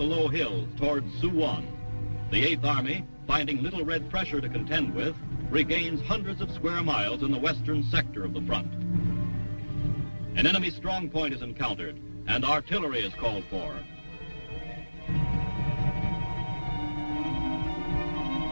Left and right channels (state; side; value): inverted; both; correlation -1.00